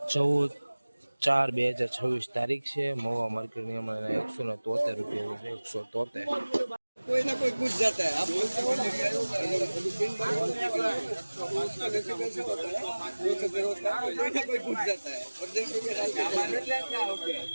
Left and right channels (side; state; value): both; inverted; correlation -1.00